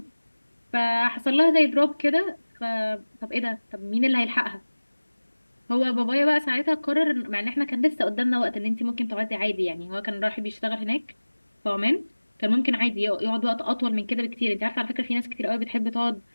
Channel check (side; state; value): both; inverted; correlation -1.00